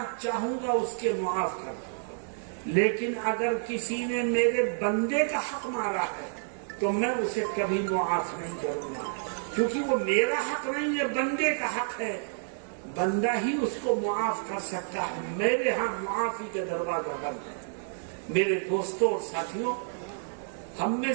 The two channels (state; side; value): silent; left; digital silence